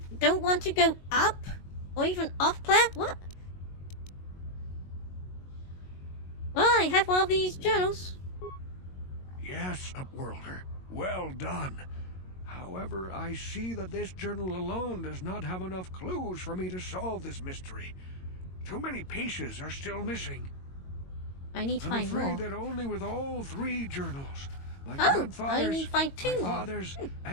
don't want to go up? Or even off planet? What? Well, I have one of these journals. Yes, Upworlder. Well done. However, I see that this journal alone does not have enough clues for me to solve this mystery. Too many pieces are still missing. I need to find more. I'm afraid that only with all three journals, my grandfather's, I need to find two my more. father's,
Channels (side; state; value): right; late; 22 ms